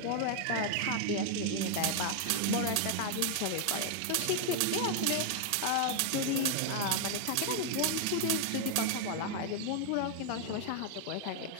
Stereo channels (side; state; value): both; different; correlation 0.00